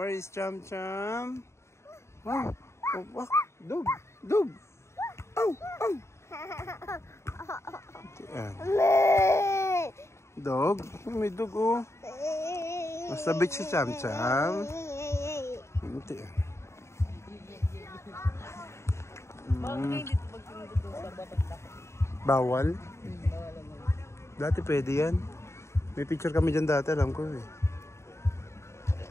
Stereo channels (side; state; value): right; late; 0.13 ms